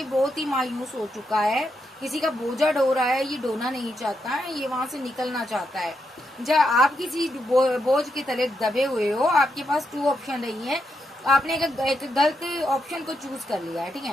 बहुत ही मायूस हो चुका है, किसी का बोझा ढो रहा है, ये ढोना नहीं चाहता है, ये वहां से निकलना चाहता है। जब आप किसी बोझ के तले दबे हुए हो, आपके पास 2 ऑप्शन रही है, आपने एक गलत ऑप्शन को चूज कर लिया है, ठीक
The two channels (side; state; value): both; normal; correlation 0.82